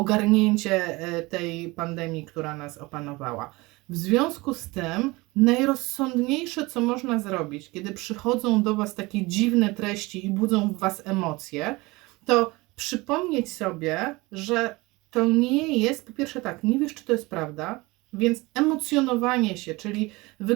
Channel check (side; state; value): left; quieter; 22.8 dB